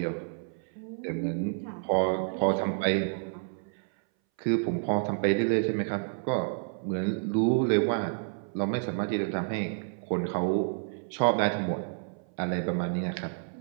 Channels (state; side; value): silent; left; 58 dB below the other